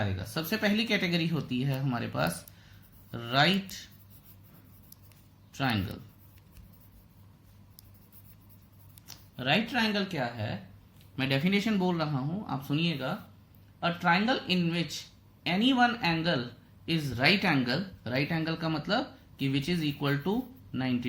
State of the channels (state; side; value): identical; both; correlation 1.00